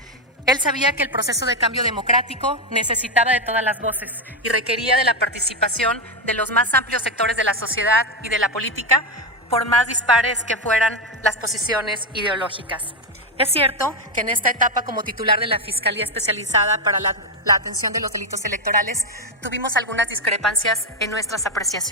Él sabía que el proceso de cambio democrático necesitaba de todas las voces y requería de la participación de los más amplios sectores de la sociedad y de la política, por más dispares que fueran las posiciones ideológicas. Es cierto que en esta etapa como titular de la Fiscalía Especializada para la Atención de los Delitos Electorales tuvimos algunas discrepancias en nuestras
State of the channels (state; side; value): normal; both; correlation 0.09